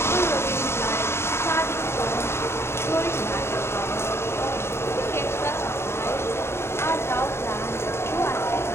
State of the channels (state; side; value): late; right; 0.12 ms